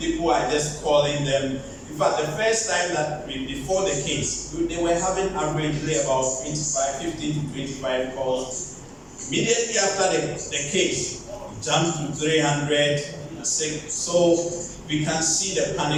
are just calling them. In fact, the first time that before the case, they were having averagely about 15 to 25 calls. Immediately after the case, it jumped to 300. So we can see the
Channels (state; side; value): identical; both; correlation 1.00